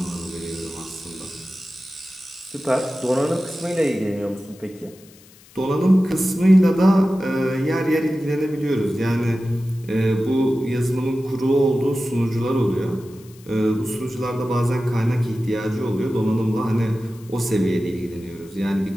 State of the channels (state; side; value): noise; left; hiss, 25 dB below the sound